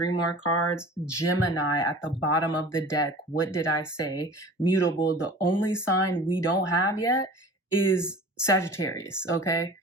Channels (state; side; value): normal; both; correlation 0.41